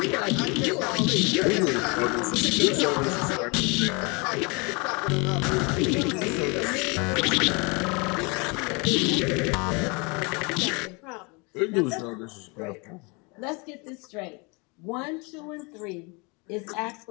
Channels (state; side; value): quieter; right; 30.0 dB